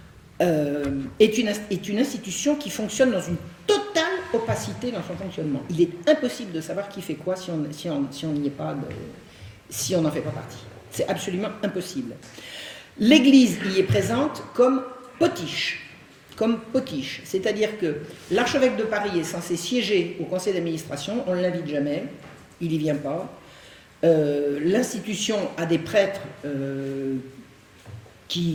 est une institution qui fonctionne dans une totale opacité dans son fonctionnement. Il est impossible de savoir qui fait quoi si on n'y est pas, si on n'en fait pas partie. C'est absolument impossible. L'Église y est présente comme potiche. C'est-à-dire que l'archevêque de Paris est censé siéger au conseil d'administration, on ne l'invite jamais, il n'y vient pas. L'institution a des prêtres à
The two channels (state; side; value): identical; both; correlation 1.00